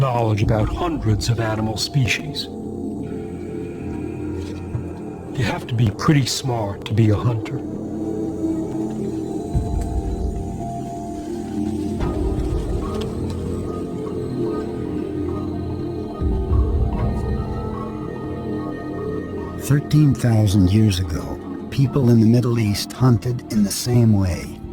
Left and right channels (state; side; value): identical; both; correlation 1.00